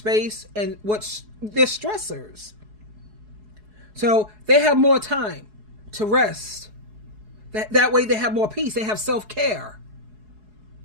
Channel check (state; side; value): late; left; 4.7 ms